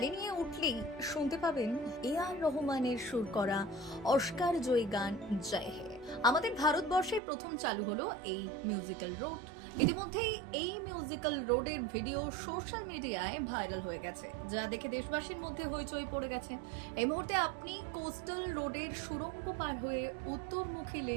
নিয়ে উঠলেই শুনতে পাবেন এআর রহমানের সুর করা অস্কার জয়ী গান জয় হে। আমাদের ভারতবর্ষে প্রথম চালু হলো এই মিউজিক্যাল রোড। ইতিমধ্যেই এই মিউজিক্যাল রোডের ভিডিও সোশ্যাল মিডিয়ায় ভাইরাল হয়ে গেছে, যা দেখে দেশবাসীর মধ্যে হইচই পড়ে গেছে। এই মুহূর্তে আপনি কোস্টাল রোডের সুড়ঙ্গ পার হয়ে উত্তরমুখী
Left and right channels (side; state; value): left; drops out; at 7.2 s